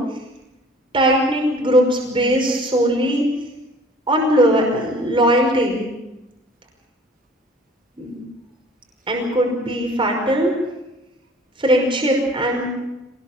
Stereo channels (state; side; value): normal; both; correlation 0.49